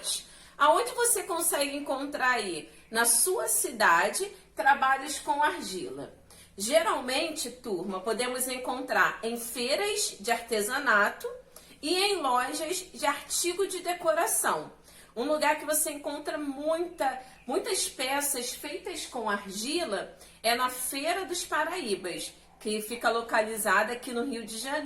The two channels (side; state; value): both; identical; correlation 1.00